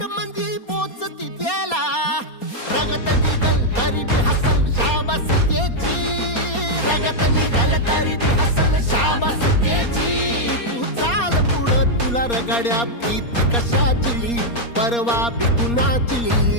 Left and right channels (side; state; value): right; late; 4.3 ms